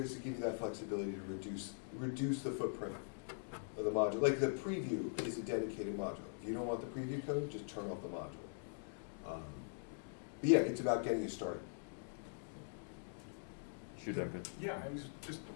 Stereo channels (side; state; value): right; silent; digital silence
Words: to give you that flexibility to reduce the footprint of the module. Like the preview is a dedicated module. If you don't want the preview code, just turn off the module. But yeah, it's about getting you started. Yeah, I was just